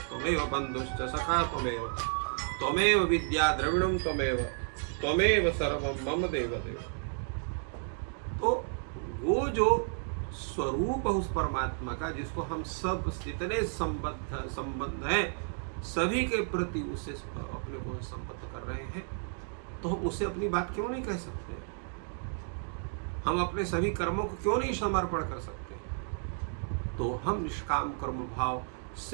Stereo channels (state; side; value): silent; left; 56 dB below the other